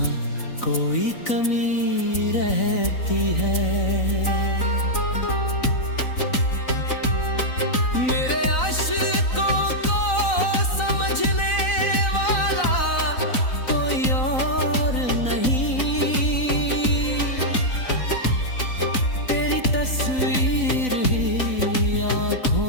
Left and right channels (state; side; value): late; right; 4.0 ms